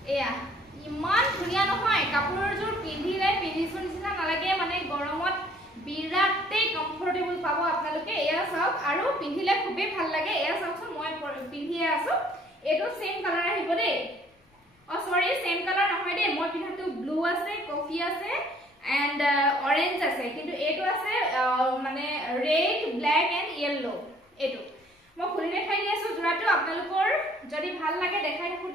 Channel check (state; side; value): normal; both; correlation 0.59